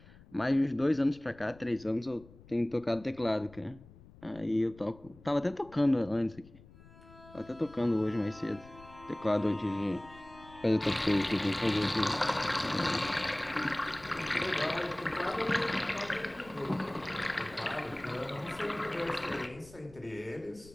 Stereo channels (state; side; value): noise; left; rumble, 22 dB below the sound